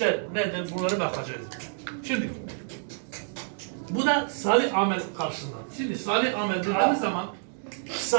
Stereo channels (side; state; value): left; silent; digital silence